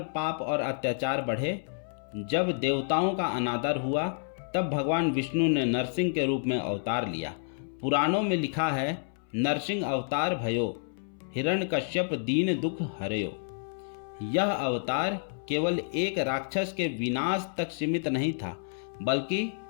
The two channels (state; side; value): silent; right; 58 dB below the other